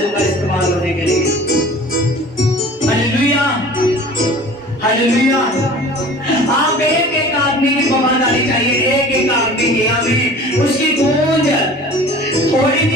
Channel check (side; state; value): both; normal; correlation 0.43